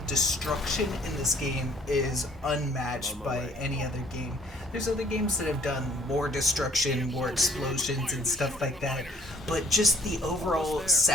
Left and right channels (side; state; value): both; normal; correlation 0.59